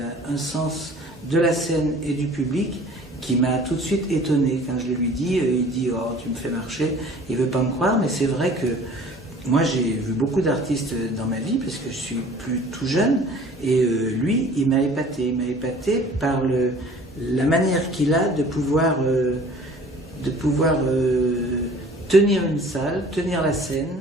un sens de la scène et du public qui m'a tout de suite étonné. Quand je le lui dis, il dit « Oh, tu me fais marcher », il veut pas me croire, mais c'est vrai que moi j'ai vu beaucoup d'artistes dans ma vie, parce que je suis plus tout jeune, et lui, il m'a épaté par la manière qu'il a de pouvoir tenir une salle, tenir la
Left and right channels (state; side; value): normal; both; correlation 0.49